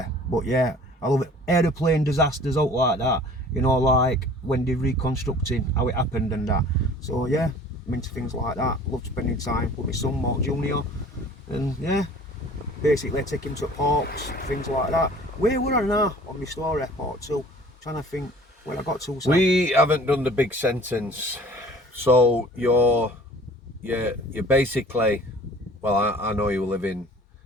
But yeah, I love it. Aeroplane disasters out like that. You know, like when they're reconstructing how it happened and that. So yeah, I'm into things like that. Love spending time with my son, Mark Jr. And yeah, basically take him to parks, things like that. Where were I now on my story, part 2? Trying to think where I got to. We haven't done the big sentence. So you're basically, well, I know you were living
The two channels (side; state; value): both; normal; correlation 0.48